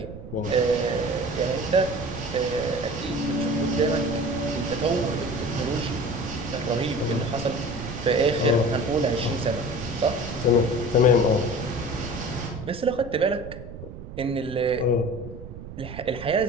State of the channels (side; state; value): right; noise; rumble, 12 dB below the sound